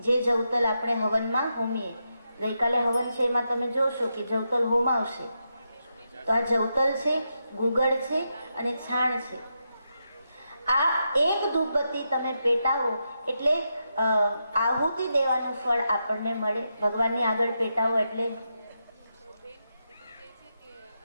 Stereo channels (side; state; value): both; inverted; correlation -0.85